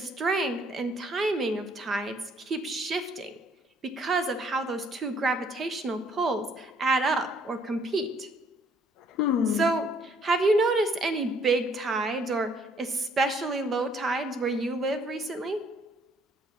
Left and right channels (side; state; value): both; normal; correlation 0.64